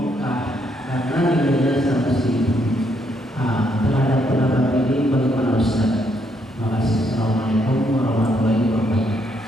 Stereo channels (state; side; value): normal; both; correlation 0.74